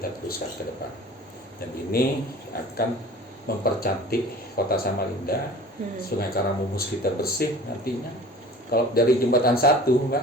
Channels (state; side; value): normal; both; correlation 0.43